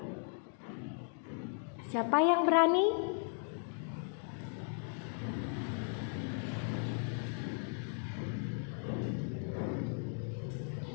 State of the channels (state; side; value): silent; right; 53 dB below the other